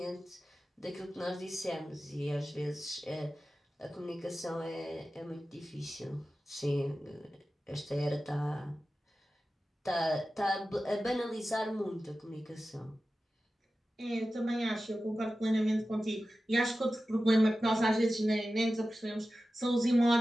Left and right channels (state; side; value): normal; both; correlation 0.94